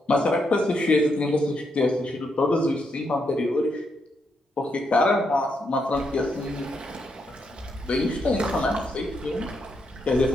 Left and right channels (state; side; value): normal; both; correlation 0.80